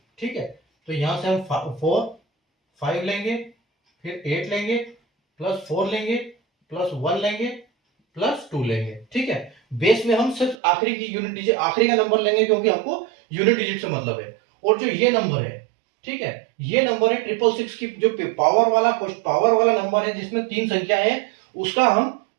ठीक है, तो यहां से हम 5 लेंगे, फिर 8 लेंगे, प्लस 4 लेंगे, प्लस 1 लेंगे, प्लस 2 लेंगे। ठीक है, बेस में हम सिर्फ आखिरी की यूनिट डिजिट, आखिरी का नंबर लेंगे क्योंकि हमको यूनिट डिजिट से मतलब है। और जो ये नंबर है, ठीक है, ये नंबर है 666 की, जो पावर वाला नंबर है जिसमें 3 संख्या है, उसका हम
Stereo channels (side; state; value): left; drops out; at 10.6 s